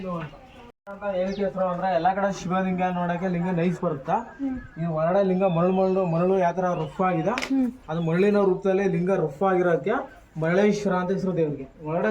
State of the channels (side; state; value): both; identical; correlation 1.00